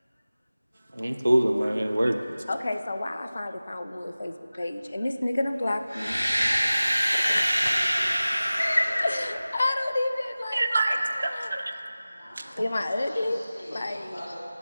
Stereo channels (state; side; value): inverted; both; correlation -0.97